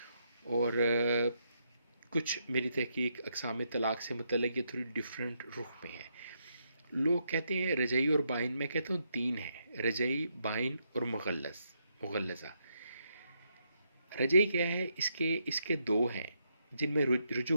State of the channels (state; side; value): inverted; both; correlation -0.79